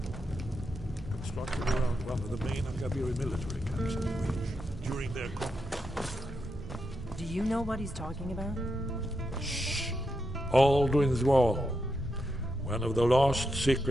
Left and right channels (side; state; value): both; normal; correlation 0.85